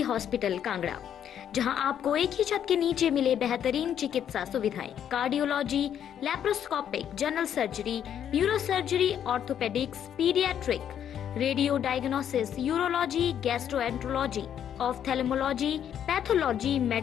hospital Kangra, जहां आपको एक ही छत के नीचे मिले बेहतरीन चिकित्सा सुविधाएं, cardiology, laparoscopic, general surgery, neuro surgery, orthopaedics, paediatric, radio diagnosis, urology, gastroenterology, ophthalmology, pathology,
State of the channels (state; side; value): quieter; right; 9.5 dB